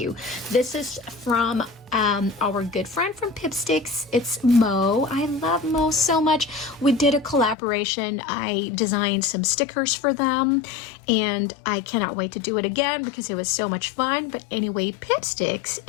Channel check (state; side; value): drops out; right; at 7.6 s